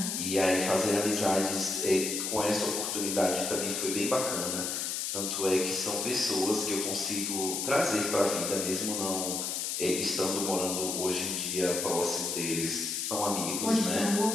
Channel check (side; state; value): left; noise; hiss, 2 dB below the sound